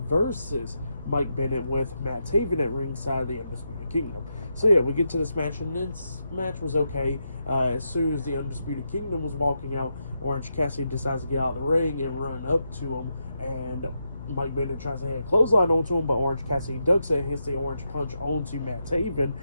versus Mike Bennett, with Matt Taven at ringside of the Undisputed Kingdom. So yeah, we get to this match, and this match was okay. As soon as the Undisputed Kingdom was walking out, Orange Cassidy decides to get out of the ring and run up to him, and Mike Bennett tries to hit a clothesline onto him, but Orange Cassidy ducks it and hits the orange punch onto Matt Taven,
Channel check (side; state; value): both; inverted; correlation -0.84